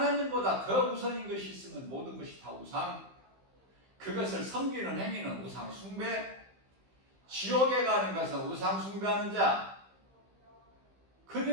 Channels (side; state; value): left; late; 15 ms